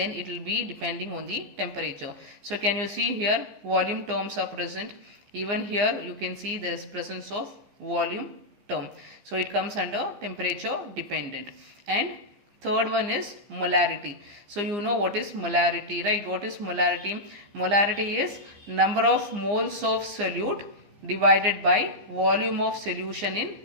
it will be depending on the temperature. So can you see here volume terms are present, even here you can see there is presence of volume term, so it comes under temperature dependent. And third one is molarity. So you know what is molarity, right? What is molarity? Molarity is number of moles of solute divided by volume of solution in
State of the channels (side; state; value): left; late; 15 ms